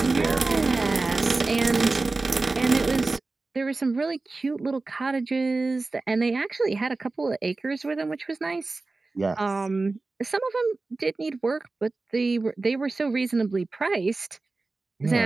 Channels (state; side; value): quieter; left; 3.5 dB